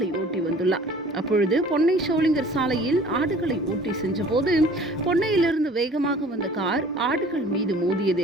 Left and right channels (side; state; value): both; normal; correlation 0.49